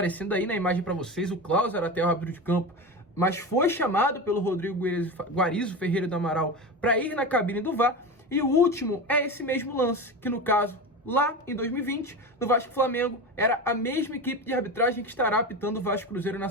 aí na imagem para vocês, o Klaus era até o árbitro de campo, mas foi chamado pelo Rodrigo Guarizo Ferreira do Amaral para ir na cabine do VAR. E o último é esse mesmo lance, que no caso, lá em 2020, no Vasco Flamengo, era a mesma equipe de arbitragem que estará apitando o Vasco Cruzeiro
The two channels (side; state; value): both; normal; correlation 0.24